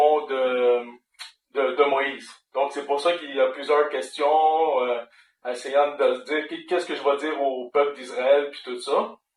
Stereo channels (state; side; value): identical; both; correlation 1.00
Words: de Moïse. Donc c'est pour ça qu'il y a plusieurs questions, essayant de se dire qu'est-ce que je vais dire au peuple d'Israël, puis tout ça.